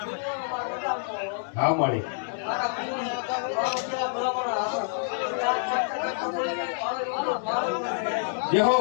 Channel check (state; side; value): silent; right; 60 dB below the other